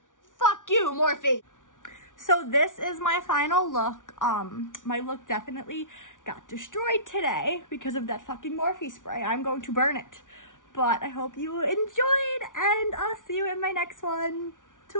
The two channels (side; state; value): right; late; 0.88 ms